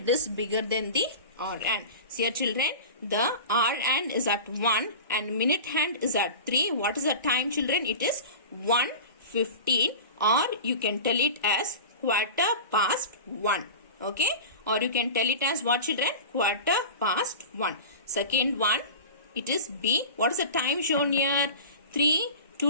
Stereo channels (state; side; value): inverted; both; correlation -0.33